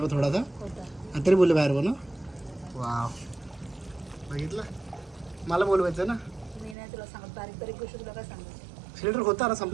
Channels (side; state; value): left; drops out; at 6.8 s